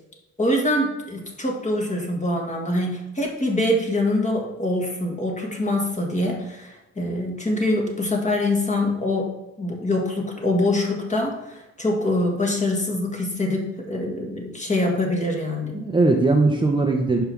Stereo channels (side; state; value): both; normal; correlation 0.63